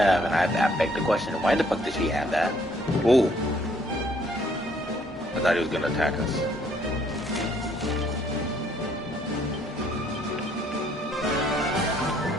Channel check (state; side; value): normal; both; correlation 0.65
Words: and I beg the question, why the fuck did she have that? Ooh. I thought he was gonna attack us.